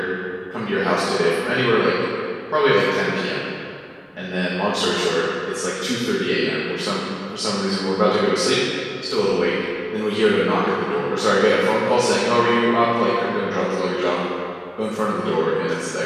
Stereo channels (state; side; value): identical; both; correlation 1.00